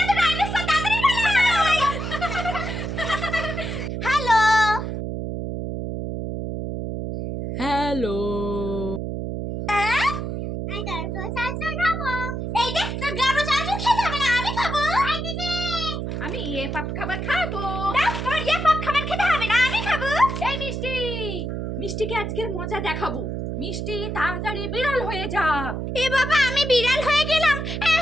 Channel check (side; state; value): right; noise; hum, 4 dB below the sound